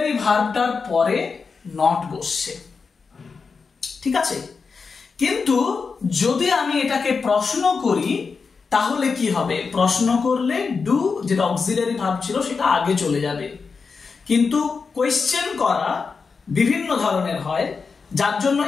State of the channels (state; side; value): quieter; right; 5.0 dB